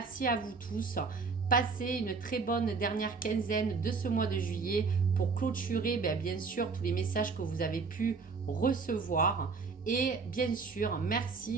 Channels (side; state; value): left; quieter; 4.7 dB